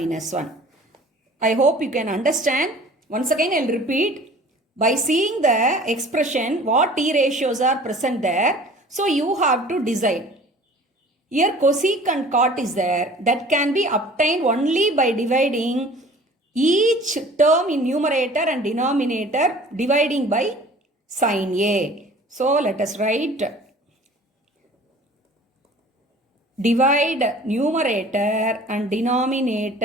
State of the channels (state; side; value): normal; both; correlation 0.47